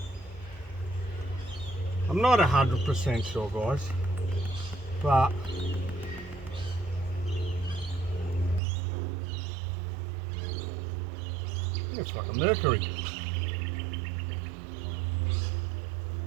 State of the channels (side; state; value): left; drops out; at 8.6 s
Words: I'm not 100% sure, guys, but it's like a mercury.